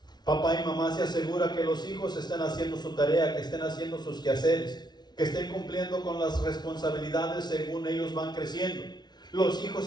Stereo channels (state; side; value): late; right; 0.20 ms